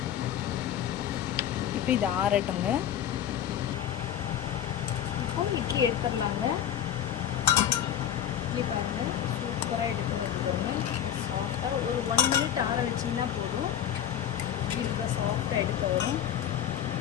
இப்போ இது ஆறட்டுங்க. இப்போ இட்லி எடுத்துடலாங்க. இட்லி பாருங்கள் சூப்பராக எடுத்து வருதுங்க. சாஃப்டாக ஒரு 1 minute ஆற வச்சிங்கன்னா போதும். இட்லி சாஃப்டாக எடுக்க வரும்.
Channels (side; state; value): right; quieter; 10.1 dB